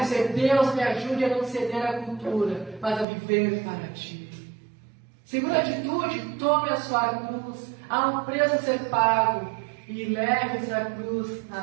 dizer: Deus, me ajude a não ceder à cultura, mas a viver para Ti. Segunda atitude: tome a sua cruz. Há um preço a ser pago. E leve essa cruz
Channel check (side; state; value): left; drops out; at 3.1 s